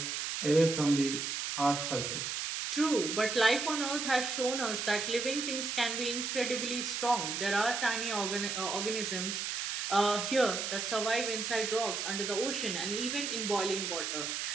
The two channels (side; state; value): right; noise; hiss, 2 dB below the sound